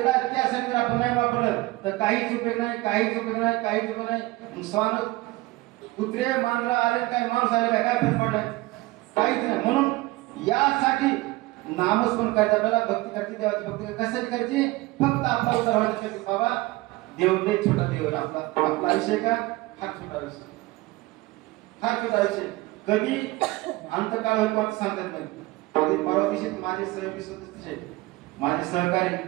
त्यासाठी आपण नाही वापरलं तर काहीच उपयोग नाही, काहीच उपयोग नाही, काहीच उपयोग नाही. स्वान कुत्रे मांजरा आले काय, माणूस आले काय फरक पडलाय? काहीच नाही. म्हणून यासाठी नामस्मरण करायचं, आपल्याला भक्ती करते, देवाची भक्ती कशासाठी करायची? फक्त आपला उद्धार व्हायचा. बाबा देव लय छोटा देव, आपला आयुष्य का फार छोटा आयुष्य, फार छोटा आयुष्य. कधी अंतकाळ होईल कोणतं सांगता येत नाही. कधी परवा दिवशी माझे सहयोगी सदस्य, माझे सहकारी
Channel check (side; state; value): left; quieter; 20.0 dB